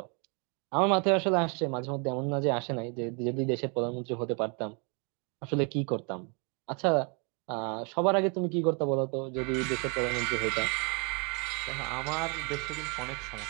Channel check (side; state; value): left; quieter; 33.8 dB